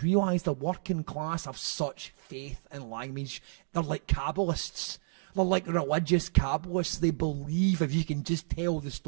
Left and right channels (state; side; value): silent; left; digital silence